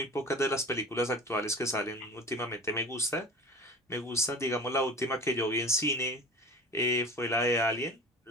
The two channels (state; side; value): normal; both; correlation 0.36